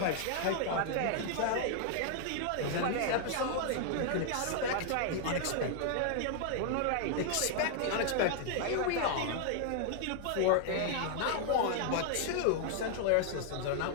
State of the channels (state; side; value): different; both; correlation 0.00